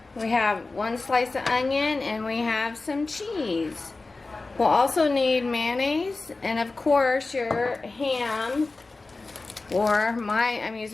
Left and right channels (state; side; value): quieter; right; 3.5 dB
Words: We have 1 slice of onion and we have some cheese. We'll also need mayonnaise and of course your ham, or I'm